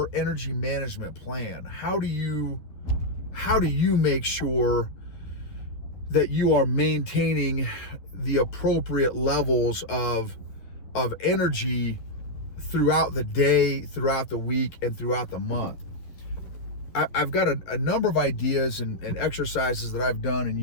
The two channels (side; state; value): right; late; 11 ms